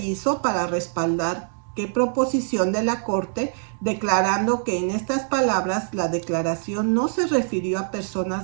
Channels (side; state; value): left; silent; digital silence